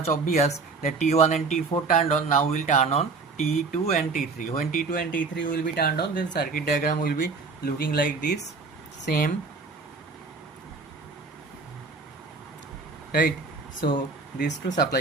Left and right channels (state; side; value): quieter; left; 4.3 dB